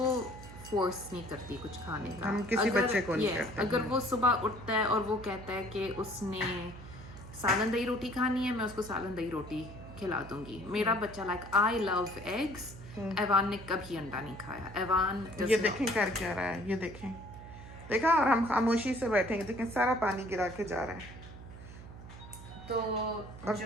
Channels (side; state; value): right; noise; hum, 15 dB below the sound